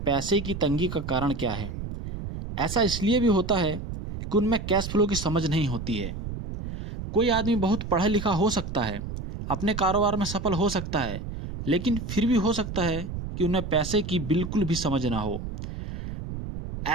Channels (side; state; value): right; noise; rumble, 7 dB below the sound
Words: की तंगी का कारण क्या है। ऐसा इसलिए भी होता है कि उनमें कैश फ्लो की समझ नहीं होती है। कोई आदमी बहुत पढ़ा लिखा हो सकता है, अपने कारोबार में सफल हो सकता है, लेकिन फिर भी हो सकता है कि उन्हें पैसे की बिल्कुल भी समझ ना हो।